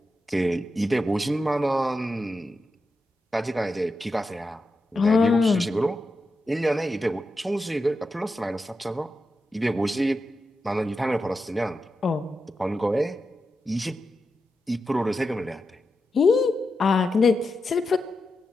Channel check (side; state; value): both; normal; correlation 0.89